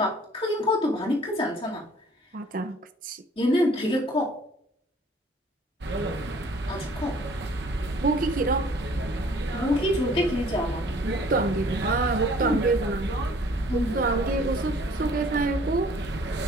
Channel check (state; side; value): normal; both; correlation 0.55